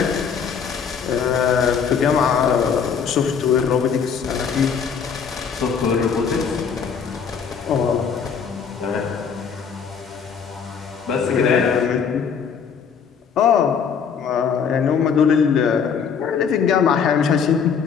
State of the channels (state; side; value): quieter; right; 6.7 dB